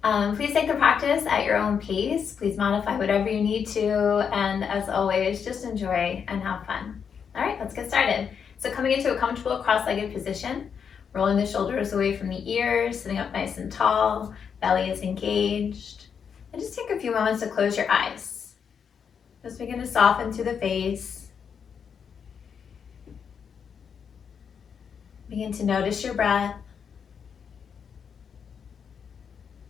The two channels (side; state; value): right; quieter; 7.0 dB